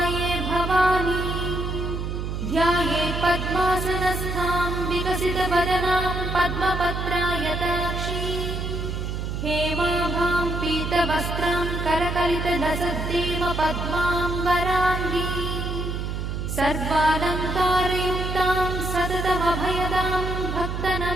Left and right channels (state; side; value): noise; right; hum, 3 dB below the sound